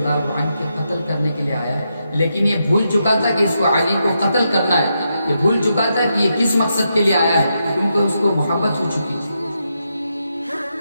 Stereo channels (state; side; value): inverted; both; correlation -0.83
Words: عنہ کے قتل کرنے کے لیے آیا ہے، لیکن یہ بھول چکا تھا کہ اس کو علی کو قتل کرنا ہے، یہ بھول چکا تھا کہ یہ کس مقصد کے لیے آیا ہے، کیونکہ اس کو محبت ہو چکی تھی۔